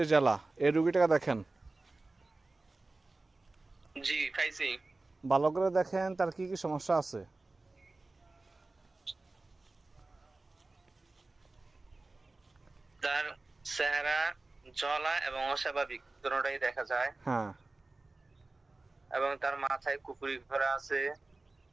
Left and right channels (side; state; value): left; quieter; 3.2 dB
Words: জেলা। এই রুগীটাকে দেখেন, জি খাইছি। ভালো করে দেখেন তার কি কি সমস্যা আছে। তার চেহারা জ্বলা এবং অস্বাভাবিক দুটোটাই দেখা যায়। হ্যাঁ, এবং তার মাথায় কুফুরি করা আছে,